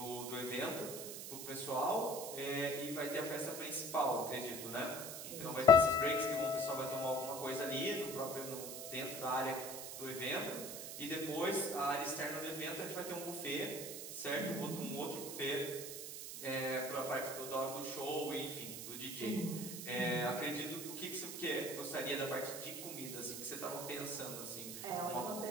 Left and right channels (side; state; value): right; noise; hiss, 7 dB below the sound